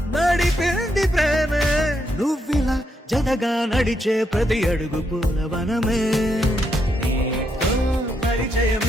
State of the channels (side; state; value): both; normal; correlation 0.79